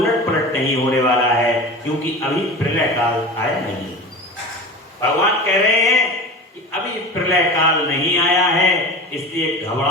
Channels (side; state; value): both; normal; correlation 0.32